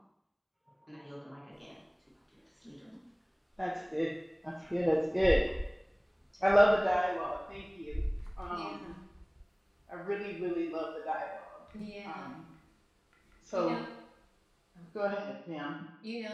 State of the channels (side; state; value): both; identical; correlation 1.00